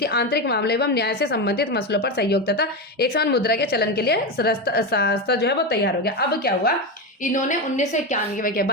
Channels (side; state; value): both; normal; correlation 0.15